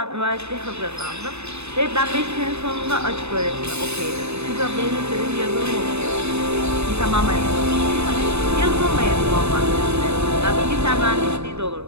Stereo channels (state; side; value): late; left; 0.80 ms